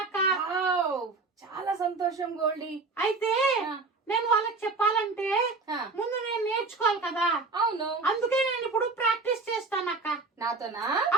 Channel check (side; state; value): left; quieter; 3.9 dB